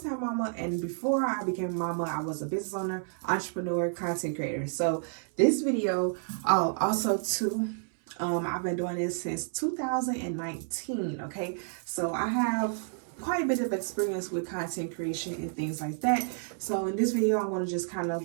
time mama, and before I became a mama, I was a business owner, entrepreneur, content creator. So this video, also too, I've been doing this since 2019, okay? So I have quite a bit of experience with content creation and things like that. So in this video, I'm going to just kind of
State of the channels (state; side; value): silent; left; 58 dB below the other